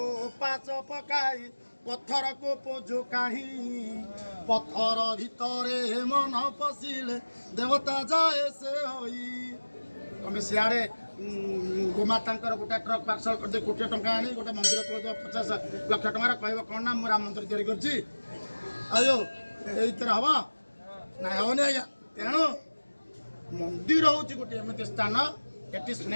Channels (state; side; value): inverted; both; correlation -1.00